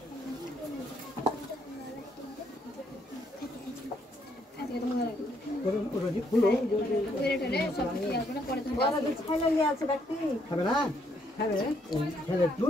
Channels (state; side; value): normal; both; correlation 0.72